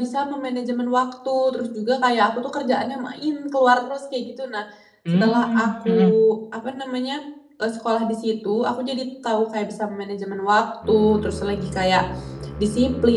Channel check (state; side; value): identical; both; correlation 1.00